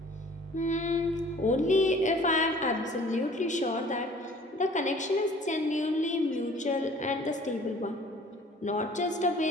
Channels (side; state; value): both; normal; correlation 0.51